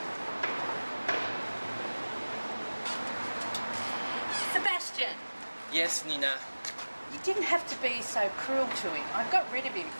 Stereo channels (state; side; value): inverted; both; correlation -1.00